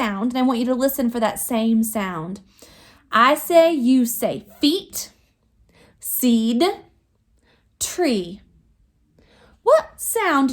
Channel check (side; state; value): both; identical; correlation 1.00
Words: and I want you to listen for that same sound. I say, you say, feet, seed, tree. What sound